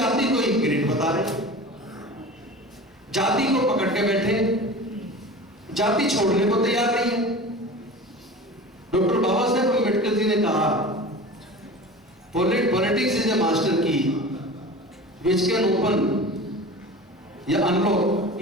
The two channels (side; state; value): both; normal; correlation 0.35